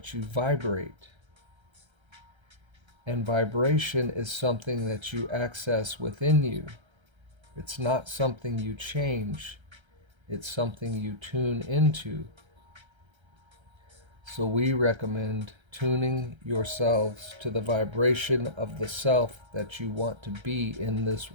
you vibrate. And vibration is something that you access within you. It's not something you change, it's something you tune into. So we recommend tuning yourselves to the vibration of the self that you want to be in this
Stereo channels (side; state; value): left; late; 1.3 ms